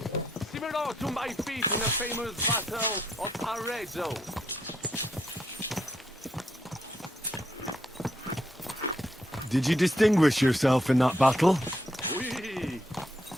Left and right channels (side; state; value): both; normal; correlation 0.77